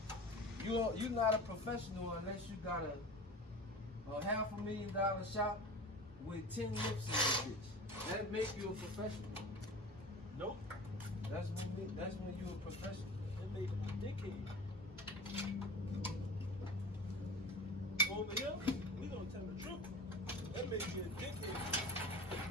You're not a professional unless you got a $500,000 shop with 10 lips in this bitch. That make you a professional. Nope. That's when you're a professional. That made him a dickhead. Over here, we gonna tell the truth. That makes you a dickhead.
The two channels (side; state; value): both; normal; correlation 0.34